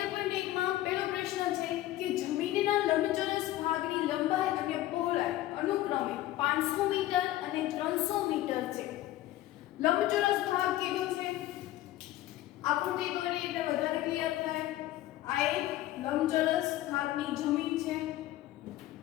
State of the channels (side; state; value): right; quieter; 15.2 dB